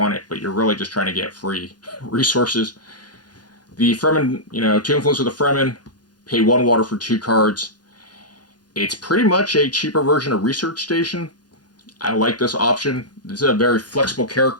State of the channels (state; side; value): late; right; 0.69 ms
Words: it, but you're really just trying to get free resources. The Fremen, 2 influence with the Fremen, pay 1 water for 2 cards. It's pretty much a cheaper version of Research Station. I like this option. This is a very flexible